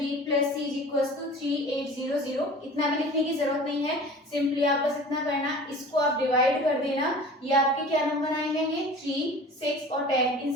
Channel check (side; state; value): both; normal; correlation 0.41